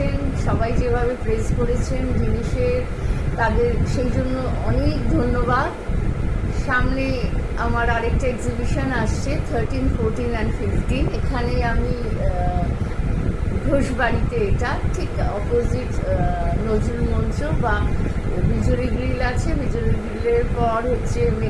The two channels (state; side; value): identical; both; correlation 1.00